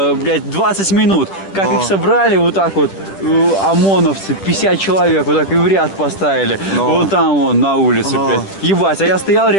блядь, 20 минут, как Но. их собрали вот так вот, ОМОНовцы, 50 человек вот так и в ряд поставили, Но. вот там вон, на улице, Но. блядь. Ебать, а я стоял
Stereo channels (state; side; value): late; right; 10 ms